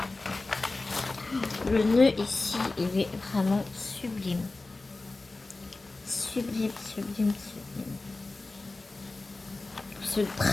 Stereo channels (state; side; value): quieter; right; 3.3 dB